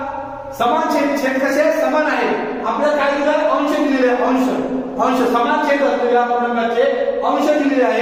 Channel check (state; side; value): identical; both; correlation 1.00